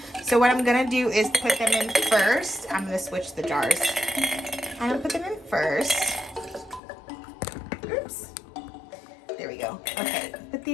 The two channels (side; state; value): right; drops out; at 6.8 s